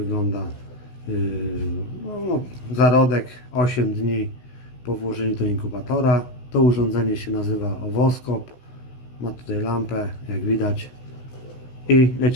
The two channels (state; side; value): late; right; 16 ms